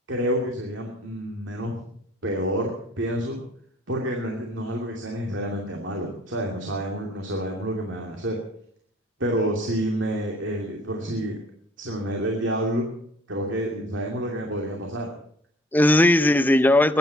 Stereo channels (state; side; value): normal; both; correlation 0.54